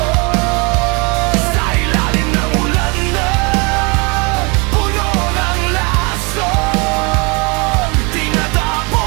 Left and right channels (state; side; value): quieter; left; 30.2 dB